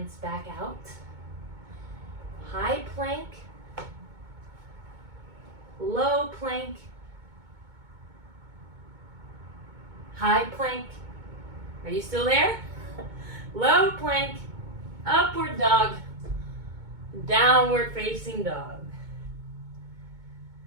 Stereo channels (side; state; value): left; late; 2.2 ms